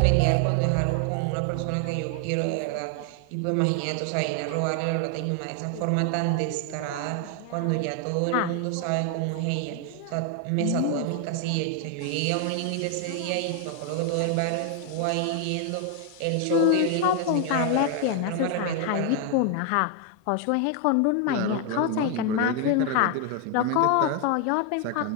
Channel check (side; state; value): both; different; correlation 0.00